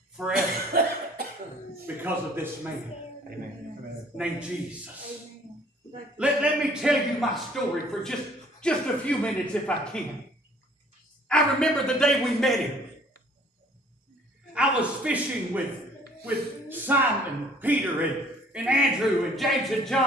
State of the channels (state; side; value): normal; both; correlation 0.56